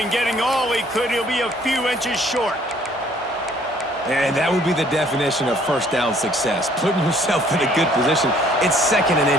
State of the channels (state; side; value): normal; both; correlation 0.60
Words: getting all he could. He'll be a few inches short. And that would be the definition of first down success. Putting yourself in a good position. It's 2nd and